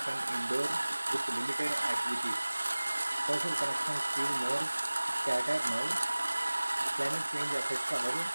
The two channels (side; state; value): both; inverted; correlation -1.00